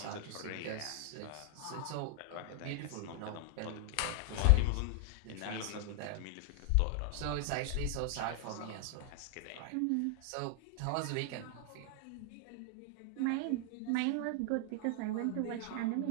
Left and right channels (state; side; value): different; both; correlation 0.00